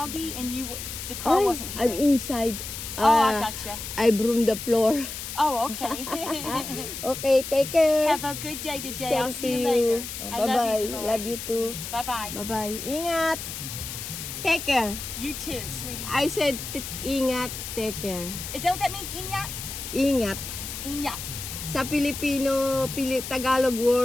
and the car wasn't here. I'm inside. Oh, I gotcha. I broom the floor. Oh, okay. Okay, take care. Have a good day today. I'll Same see to you later. Oh, I bye-bye. love you, Dolores. Love you too. Bye-bye. Bye-bye. Ingat. Take care. You too, sweetie. I said ingat, take care. Is that what that means, Inyat? Ingat. Inyat. Sa Filipino, Tagalog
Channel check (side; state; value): left; noise; hiss, 8 dB below the sound